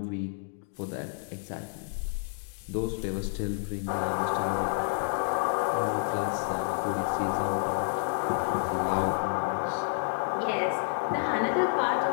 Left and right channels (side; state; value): right; silent; digital silence